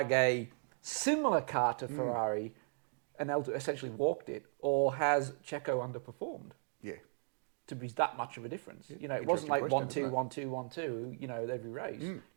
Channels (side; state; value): left; silent; 53 dB below the other